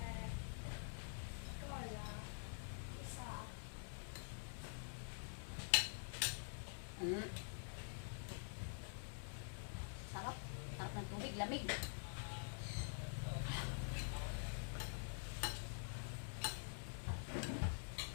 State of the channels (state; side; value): silent; right; digital silence